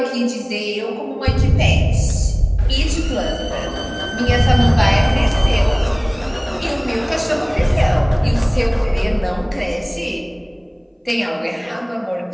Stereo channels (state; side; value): identical; both; correlation 1.00